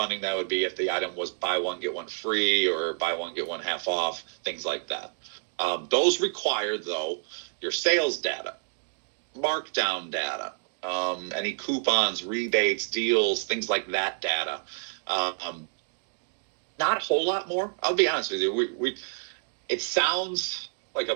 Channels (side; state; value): left; silent; 58 dB below the other